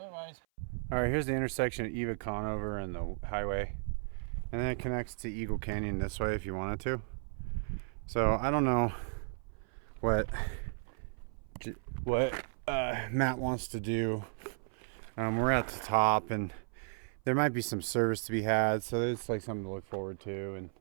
All right, here's the intersection of Eva Conover and the highway. And then it connects to Eagle Canyon this way if you wanted to. So I don't know what Matt wants to do. We're at the top and there might be some service to be had, so it's like something to look forward to. And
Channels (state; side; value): silent; left; 55 dB below the other